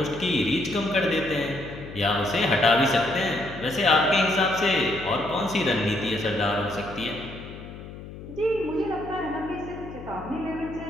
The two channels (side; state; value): left; noise; hum, 13 dB below the sound